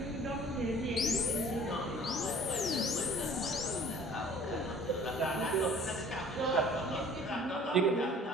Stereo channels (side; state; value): both; normal; correlation 0.50